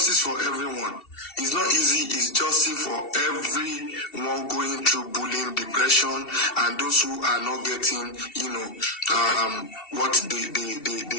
for everyone. It's not easy. It's justice for everyone going through bullying, depression, and those who are not getting, what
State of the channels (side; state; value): right; late; 2.7 ms